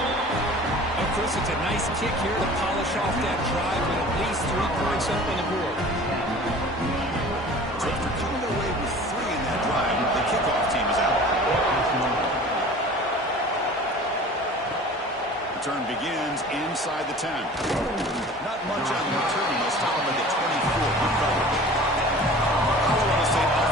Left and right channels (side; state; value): both; normal; correlation 0.43